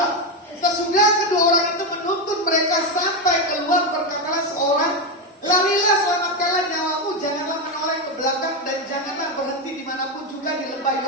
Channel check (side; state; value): both; normal; correlation 0.10